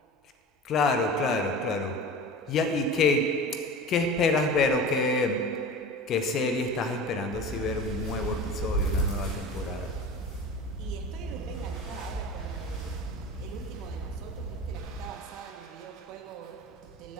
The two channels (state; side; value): normal; both; correlation 0.34